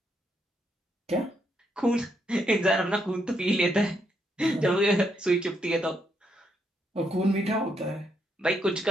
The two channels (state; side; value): normal; both; correlation 0.77